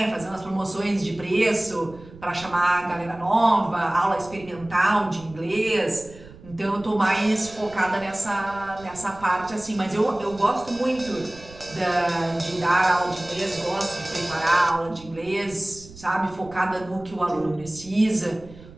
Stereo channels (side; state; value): right; noise; rumble, 20 dB below the sound